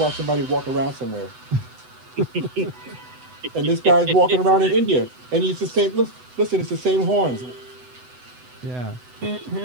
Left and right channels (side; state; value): left; late; 8.0 ms